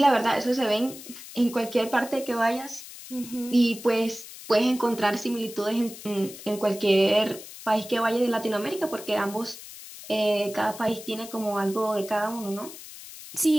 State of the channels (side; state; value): left; noise; hiss, 14 dB below the sound